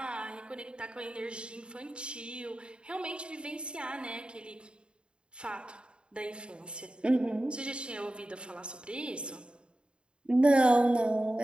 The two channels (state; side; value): late; left; 0.053 ms